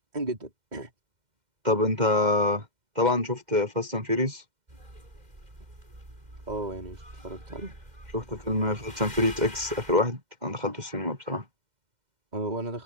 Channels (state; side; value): late; left; 2.1 ms